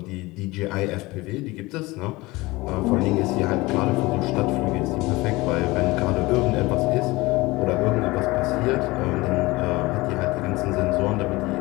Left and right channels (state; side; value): quieter; right; 21.6 dB